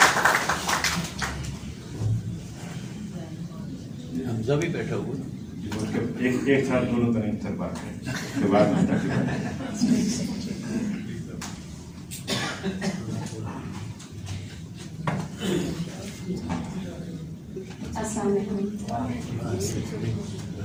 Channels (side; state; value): both; identical; correlation 1.00